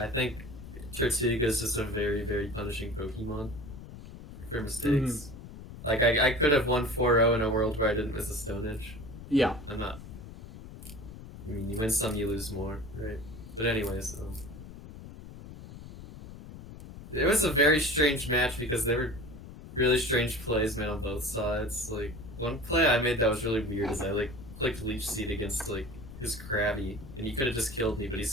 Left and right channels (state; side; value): noise; left; rumble, 14 dB below the sound